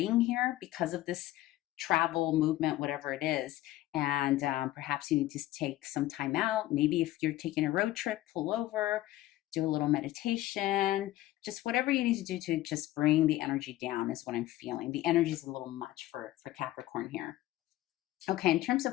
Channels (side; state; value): right; quieter; 15.6 dB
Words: here because of this travel, movement, whatever it is. And perhaps you need to take some time out. Maybe if you're taking a road trip, pull over, do a little meditation, just whatever you need to do to just bring the energy down is what I'm feeling. The energy is a little much for Capricorn here. Okay, in terms